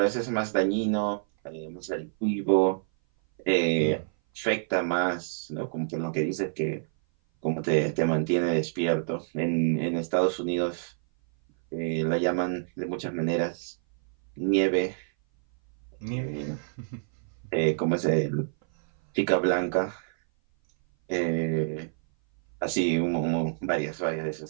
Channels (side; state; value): left; silent; 57 dB below the other